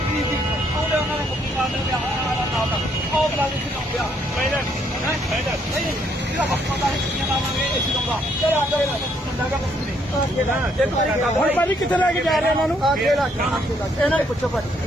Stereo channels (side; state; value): both; normal; correlation 0.70